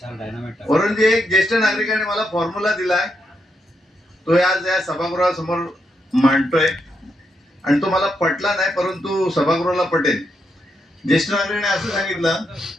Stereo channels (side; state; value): both; normal; correlation 0.81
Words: एक ज्येष्ठ नागरिकाने मला फॉर्म्युला दिलाय, तो आज या सभागृहासमोर मांडतोय आणि तो मला पटला नाही, परंतु सभागृहाला पटेल. ज्येष्ठ नागरिकाने असं सांगितलं